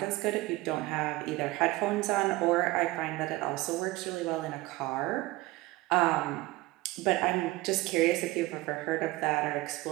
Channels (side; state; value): left; quieter; 19.6 dB